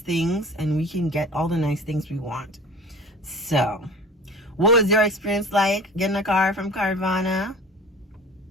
and we can get all the nice things we want. So what was your experience like getting a car from Carvana?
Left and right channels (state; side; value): normal; both; correlation 0.41